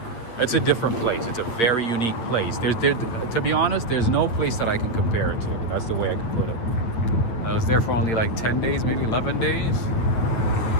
It's a different place. It's a very unique place. To be honest, there's no place that I can compare it to. That's the way I can put it. I was there for only like 10 days, maybe 11 days.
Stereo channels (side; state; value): right; late; 8.7 ms